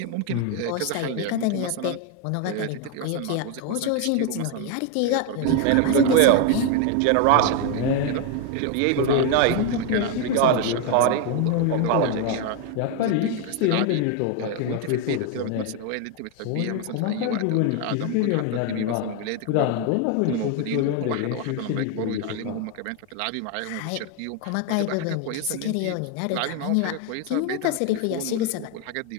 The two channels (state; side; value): different; both; correlation 0.01